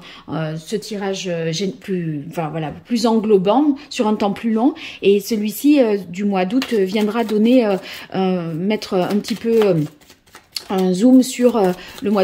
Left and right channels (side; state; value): both; identical; correlation 1.00